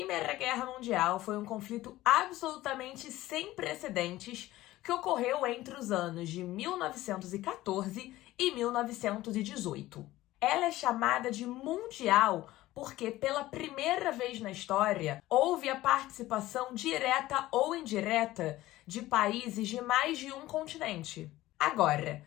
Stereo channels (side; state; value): right; quieter; 16.5 dB